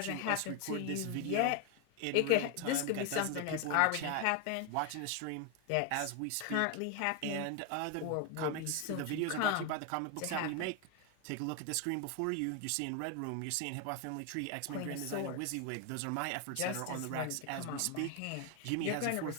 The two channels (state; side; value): different; both; correlation 0.01